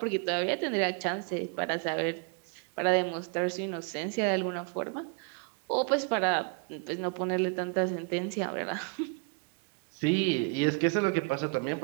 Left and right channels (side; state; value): left; quieter; 32.1 dB